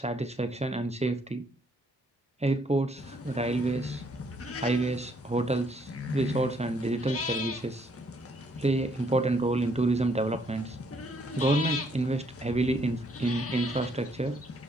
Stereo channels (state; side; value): normal; both; correlation 0.69